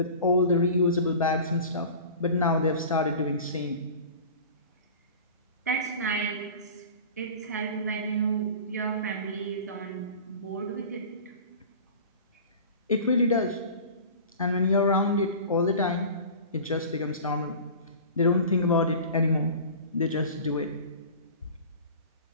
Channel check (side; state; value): both; inverted; correlation -0.38